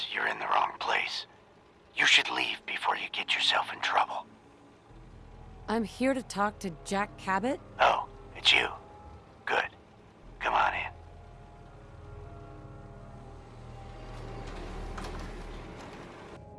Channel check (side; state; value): both; identical; correlation 1.00